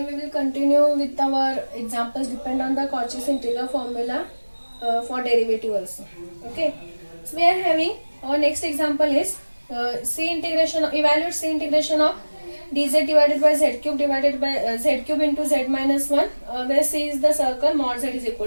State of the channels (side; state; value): both; inverted; correlation -1.00